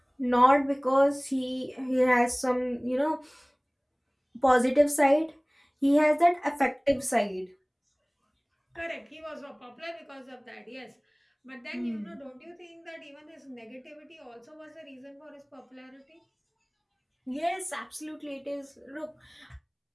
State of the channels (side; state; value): both; identical; correlation 1.00